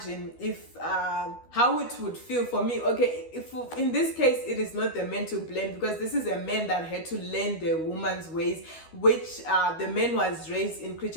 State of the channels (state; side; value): late; right; 12 ms